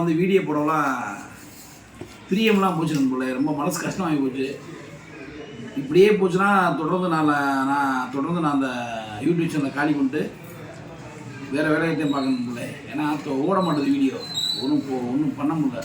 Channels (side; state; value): both; identical; correlation 1.00